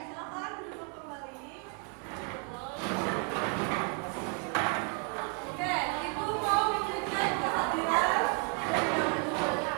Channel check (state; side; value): quieter; left; 33.1 dB